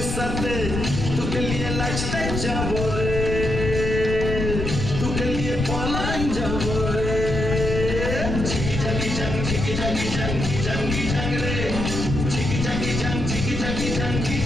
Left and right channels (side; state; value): left; noise; rumble, 3 dB below the sound